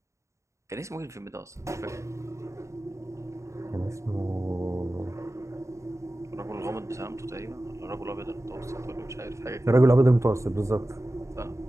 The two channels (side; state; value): left; late; 0.14 ms